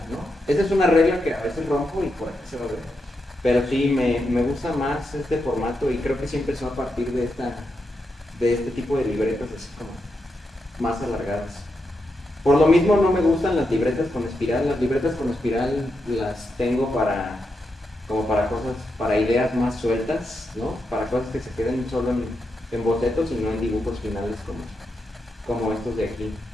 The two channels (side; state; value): both; normal; correlation 0.85